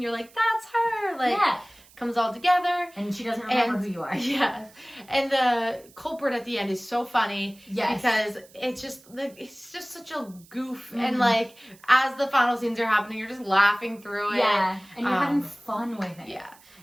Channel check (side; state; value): right; noise; hiss, 26 dB below the sound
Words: like, that's her, like comes all together. And she doesn't remember who you are. And the culprit at the end is so funny because it's just such a goof and like as the final scenes are happening you're just laughing through it. And you're having fun with it.